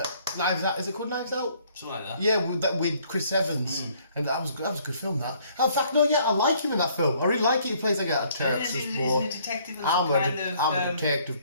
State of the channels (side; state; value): both; inverted; correlation -0.62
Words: Knives Out. Is it called Knives Out? Something like that. Yeah, with Chris Evans, and that was a good film. That. In fact, no, yeah, I like him in that film. I really like it. He plays like a terrorist boy. Isn't he a detective? I'm a detective